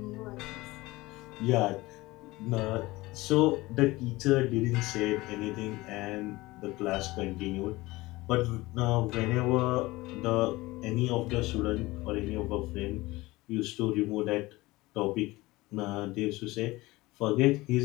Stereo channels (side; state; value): right; quieter; 20.3 dB